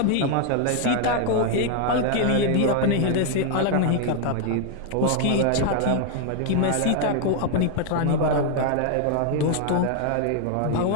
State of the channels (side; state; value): both; different; correlation 0.00